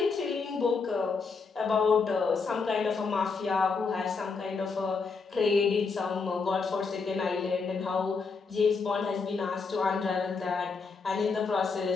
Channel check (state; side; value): quieter; right; 4.8 dB